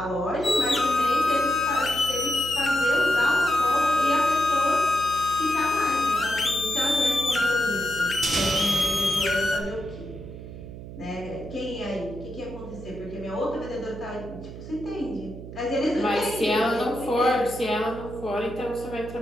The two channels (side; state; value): right; noise; hum, 12 dB below the sound